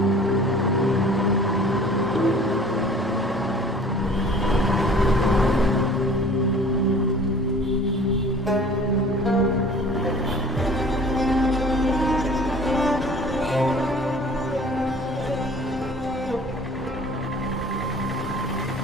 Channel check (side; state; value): both; normal; correlation 0.48